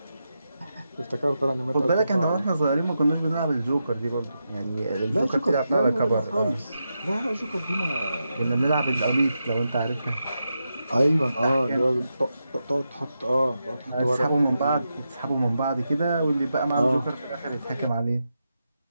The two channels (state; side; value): inverted; both; correlation -0.87